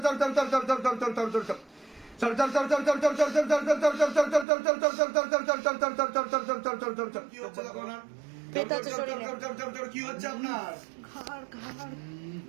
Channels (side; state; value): left; drops out; at 4.5 s